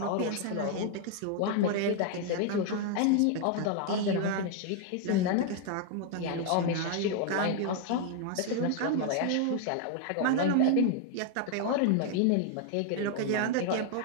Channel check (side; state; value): both; different; correlation 0.00